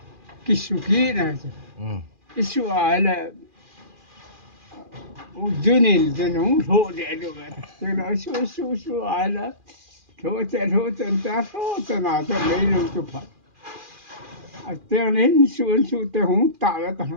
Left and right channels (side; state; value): left; late; 2.4 ms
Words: cái su kia này cái su ai là Junin dân hùng thổ để được thế là su ai là thổ tên ta thổ tên nào tên lấy luôn chụp phật tên lên su tên hùng tạ là